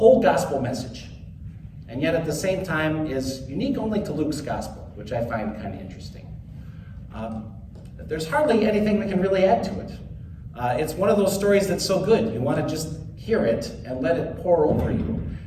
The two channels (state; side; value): identical; both; correlation 1.00